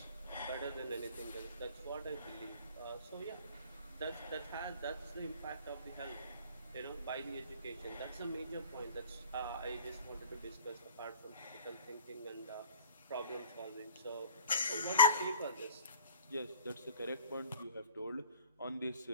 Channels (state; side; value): inverted; both; correlation -0.47